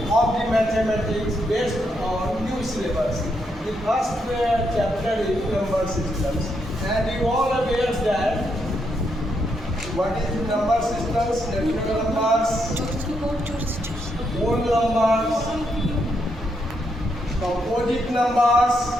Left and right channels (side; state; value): both; normal; correlation 0.79